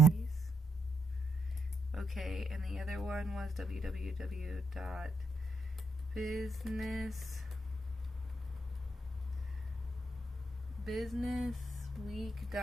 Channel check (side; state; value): both; normal; correlation 0.80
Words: Okay, and the other one was